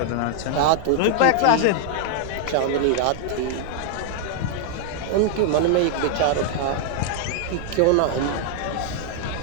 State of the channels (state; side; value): different; both; correlation 0.00